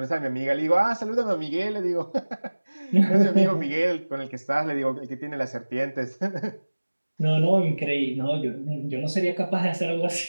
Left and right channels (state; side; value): inverted; both; correlation -1.00